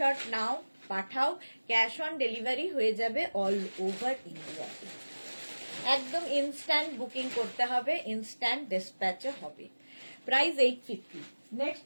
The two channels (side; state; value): both; inverted; correlation -1.00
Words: নাও পাঠাও, ক্যাশ অন ডেলিভারি হয়ে যাবে অল ওভার ইন্ডিয়াতে। একদম ইনস্ট্যান্ট বুকিং করতে হবে, ইনস্ট্যান্ট ডিসপ্যাচও হবে। প্রাইস 850। নেক্সট